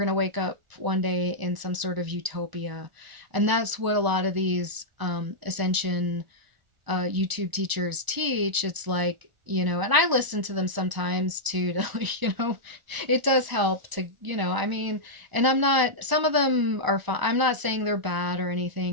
to wake up one day in some sort of utopia. And that's what a lot of these Ascension YouTube teachers teach. It's like, and I listen to them sometimes too, to, it does help to, I mean, and I'm not, some of them are fine. I'm not saying they're bad or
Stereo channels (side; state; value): left; late; 1.0 ms